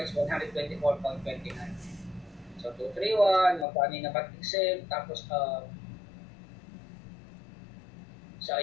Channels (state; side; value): drops out; right; at 3.7 s